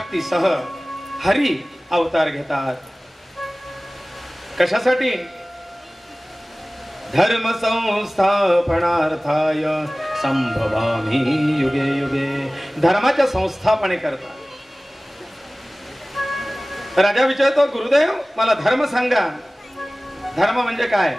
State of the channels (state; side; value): normal; both; correlation 0.98